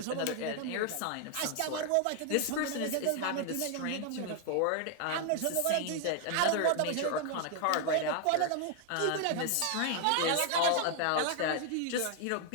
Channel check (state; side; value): different; both; correlation 0.00